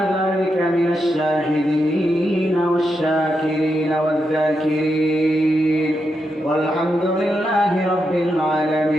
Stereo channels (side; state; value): both; normal; correlation 0.84